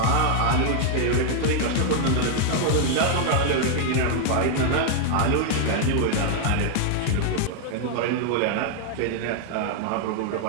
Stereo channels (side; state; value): both; different; correlation 0.00